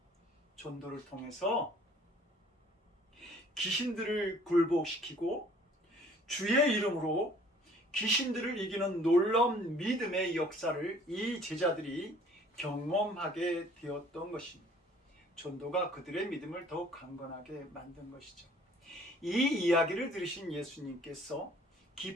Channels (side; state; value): both; normal; correlation 0.55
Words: 전도를 통해서 귀신들을 굴복시키고 주의 이름으로 귀신들을 이기는 놀라운 믿음의 역사를 이 제자들이 경험하게 되었던 것입니다. 전도가 그들의 믿음을 더욱 강건하게 만든 것이죠. 이 이야기를 들으신 예수님께서